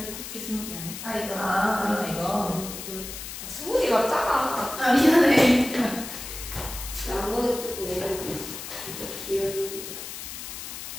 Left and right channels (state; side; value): noise; left; hiss, 9 dB below the sound